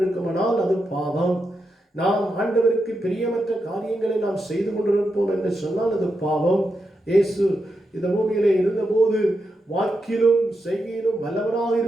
அது பாவம். நாம் ஆண்டவருக்கு பிரியமற்ற காரியங்களை நாம் செய்து கொண்டிருப்போம் என்று சொன்னால் அது பாவம். இயேசு இந்த பூமியிலே இருந்தபோது வாக்கிலும் செய்கையிலும் வல்லவராக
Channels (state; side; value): normal; both; correlation 0.86